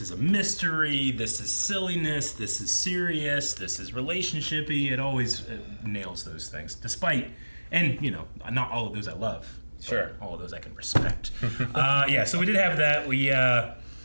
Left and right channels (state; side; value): inverted; both; correlation -1.00